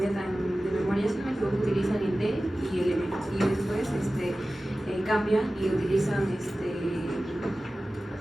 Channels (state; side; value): normal; both; correlation 0.96